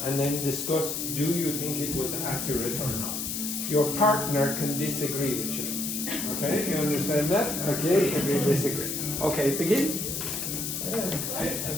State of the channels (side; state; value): left; noise; hiss, 3 dB below the sound